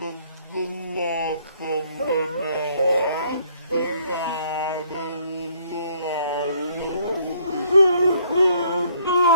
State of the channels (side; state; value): both; inverted; correlation -0.64